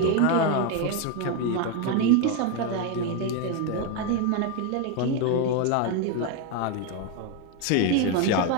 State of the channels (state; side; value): different; both; correlation 0.02